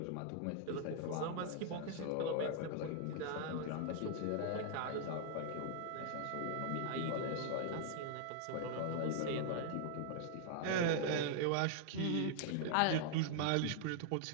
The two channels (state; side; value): different; both; correlation -0.01